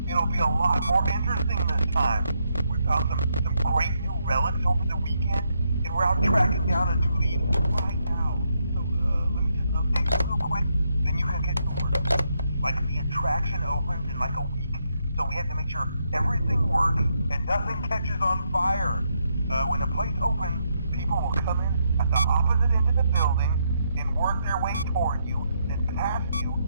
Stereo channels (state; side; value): inverted; both; correlation -0.78